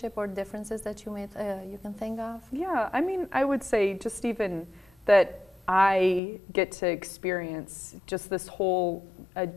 or differences that you can think of? Yeah, I would say just even that I get to experience just this whole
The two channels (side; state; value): right; drops out; at 6.2 s